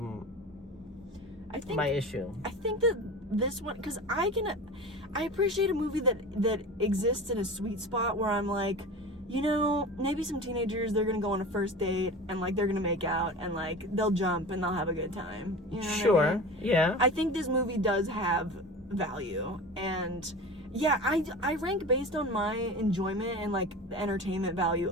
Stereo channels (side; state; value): both; normal; correlation 0.33